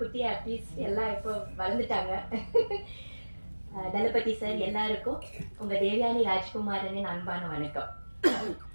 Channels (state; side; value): inverted; both; correlation -1.00